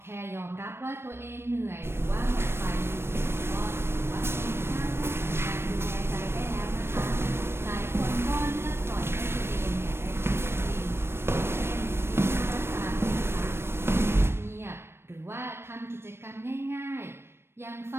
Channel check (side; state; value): left; late; 0.12 ms